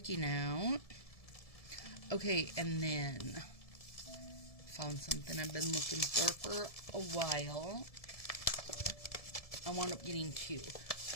out. Okay, and then found something I've been looking for a while. I wound up getting 2.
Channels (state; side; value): late; right; 1.7 ms